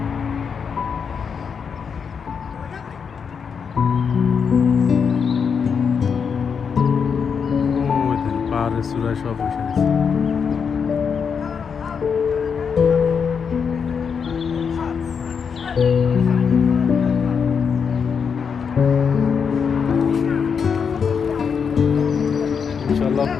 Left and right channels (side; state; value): right; quieter; 6.4 dB